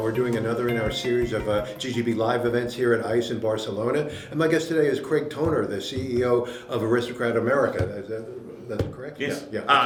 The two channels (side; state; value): both; identical; correlation 1.00